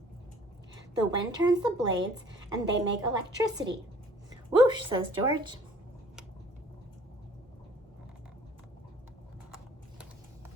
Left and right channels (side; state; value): both; normal; correlation 0.54